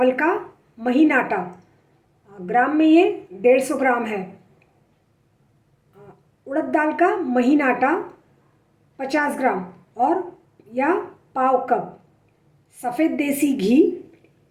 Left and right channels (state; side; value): identical; both; correlation 1.00